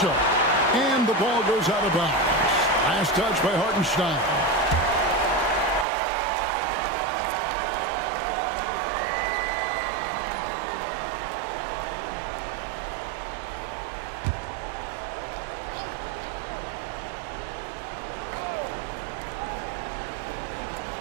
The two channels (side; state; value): left; drops out; at 5.9 s